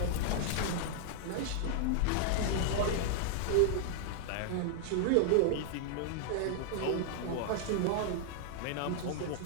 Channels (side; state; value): both; different; correlation -0.01